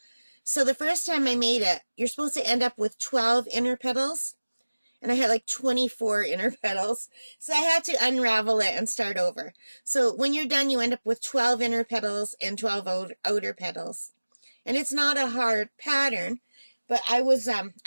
So the first time I made it, you're supposed to end up with 12 inner petals, and I had like 24 inner petals. So I had to unravel it and start over. So when you're done, you end up with 12 inner petals and 12 outer petals. And it's not a hard pattern, but I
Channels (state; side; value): inverted; both; correlation -1.00